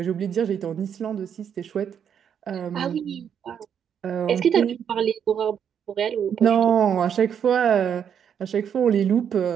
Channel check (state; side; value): quieter; left; 8.2 dB